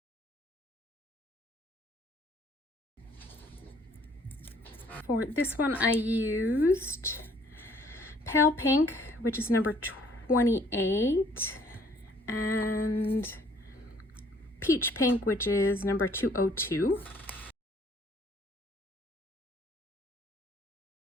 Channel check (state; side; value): normal; both; correlation 0.60